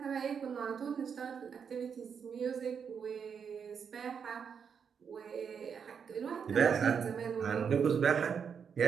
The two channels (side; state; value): left; quieter; 6.8 dB